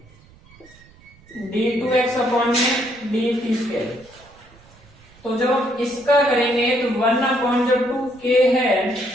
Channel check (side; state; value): right; noise; rumble, 27 dB below the sound